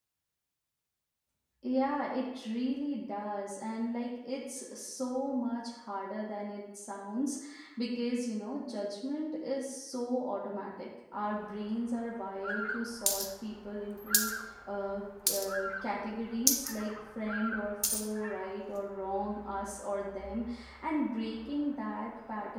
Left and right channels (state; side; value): identical; both; correlation 1.00